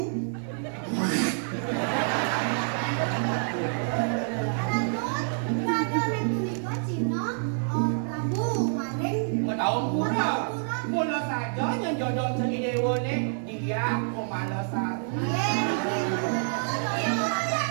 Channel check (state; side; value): silent; left; digital silence